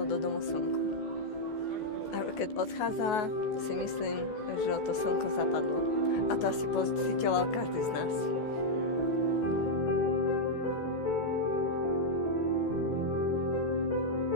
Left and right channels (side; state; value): right; late; 14 ms